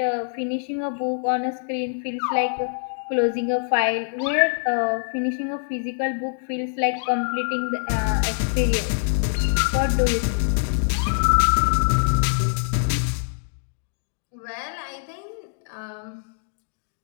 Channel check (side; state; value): right; silent; digital silence